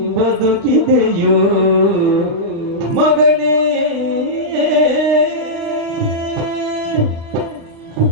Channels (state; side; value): late; left; 36 ms